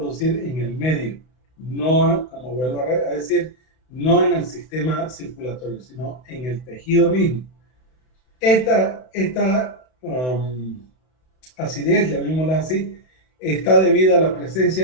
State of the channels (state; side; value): late; right; 32 ms